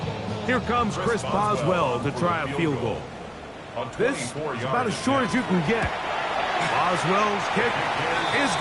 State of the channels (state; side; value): identical; both; correlation 1.00